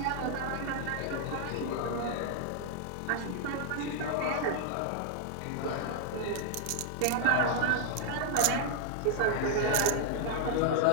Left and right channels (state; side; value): different; both; correlation 0.00